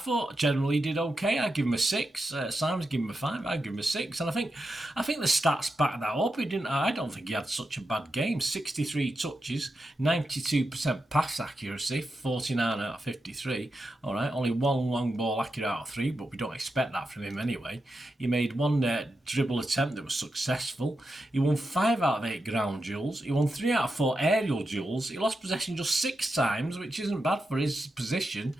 generally he did okay. I'd give him a 6. Simon's given him a 5. I'd give him a 6. And I think the stats back that up. I don't think he had such a bad game. 63 touches, 92% pass accuracy, 49 out of 53. All right, only 1 long ball accurate out of 3, but we don't expect that from him anyway. He made 1 dribble attempt that was successful. He won 5 out of 8 ground duels. He won 3 out of 4 aerial duels. He lost possession just 6 times, which isn't bad for his position.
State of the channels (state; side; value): normal; both; correlation 0.88